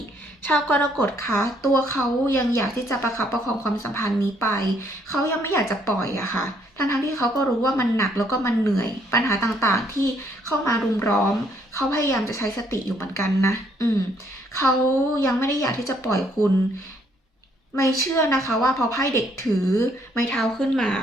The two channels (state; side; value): normal; both; correlation 0.68